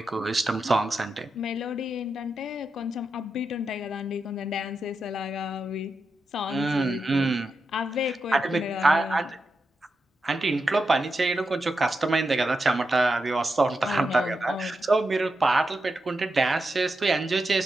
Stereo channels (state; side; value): normal; both; correlation 0.87